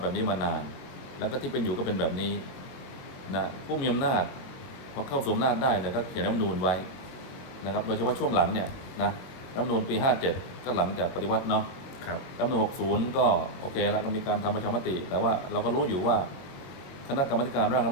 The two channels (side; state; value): right; late; 22 ms